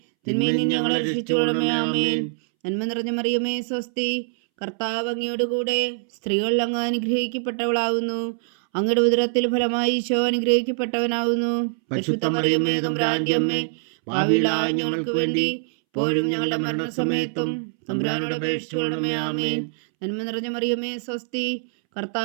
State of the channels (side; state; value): left; silent; 63 dB below the other